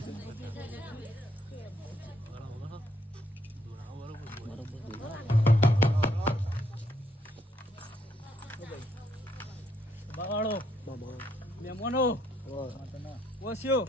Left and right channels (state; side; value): normal; both; correlation 0.72